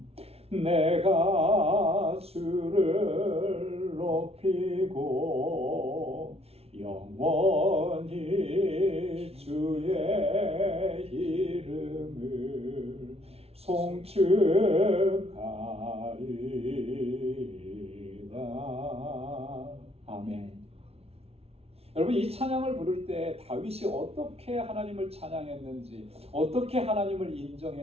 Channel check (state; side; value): late; left; 0.30 ms